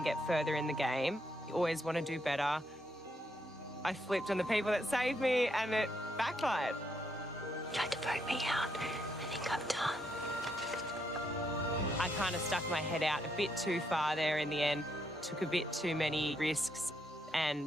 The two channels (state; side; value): normal; both; correlation 0.77